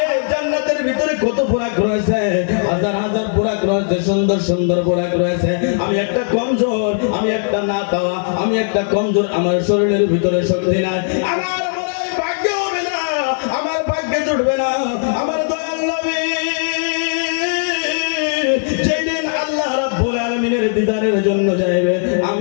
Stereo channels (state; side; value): silent; right; 60 dB below the other